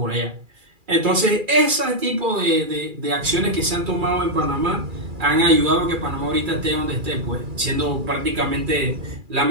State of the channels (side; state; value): left; late; 2.3 ms